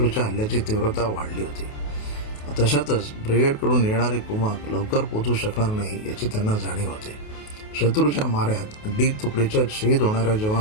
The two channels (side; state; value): right; late; 28 ms